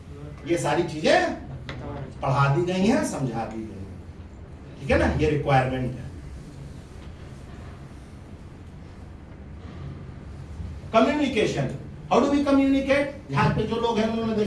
ये सारी चीजें पढ़ा दी गई हैं, समझा दी गई. ठीक है ना? ये रिक्वायरमेंट है. Communication. How do we communicate? यहाँ पे जो लोग हैं उन्होंने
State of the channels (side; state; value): both; identical; correlation 1.00